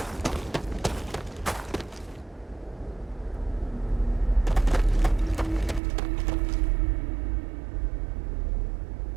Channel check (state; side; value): drops out; left; at 5.8 s